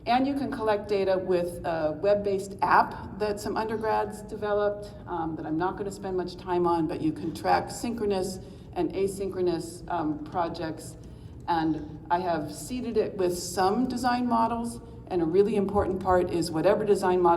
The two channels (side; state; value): both; identical; correlation 1.00